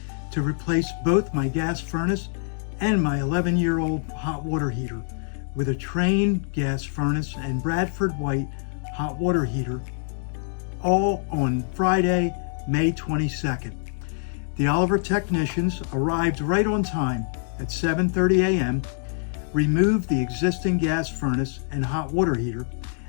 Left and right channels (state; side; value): silent; right; 62 dB below the other